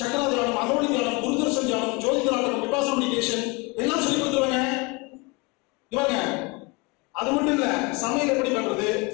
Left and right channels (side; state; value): right; quieter; 27.2 dB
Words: தியானம், அகவடி தியானம், குருதர்ஷன் தியானம், ஜோதி விபாசனா மெடிடேஷன் எல்லாம் சொல்லி கொடுத்துருவாங்க. இவங்க அது மட்டும் இல்ல, சமையல் எப்படி பண்றது,